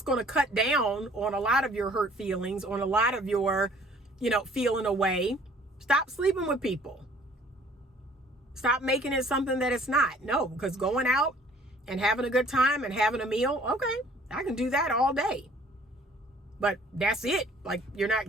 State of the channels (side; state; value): both; normal; correlation 0.55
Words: going to cut down on a lot of your hurt feelings, on a lot of your feeling away. Stop sleeping with people. Stop making it something that it's not. No, because going out and having a good time and having a meal, okay, I can do that all day. But that's it. Like, you're not